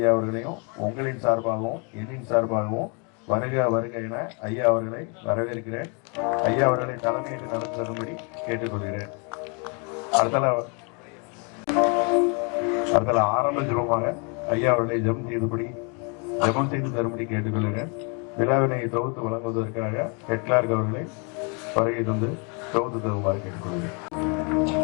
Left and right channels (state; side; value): quieter; right; 35.0 dB